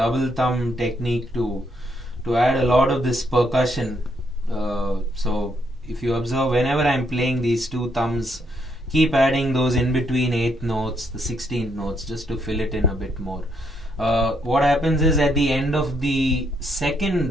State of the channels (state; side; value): normal; both; correlation 0.75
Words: thumb technique to add a lot of this percussion. So if you observe, whenever I'm playing these two thumbs, keep adding those in between 8th notes, the 16th notes, just to fill it in a bit more. What happens is at the end of the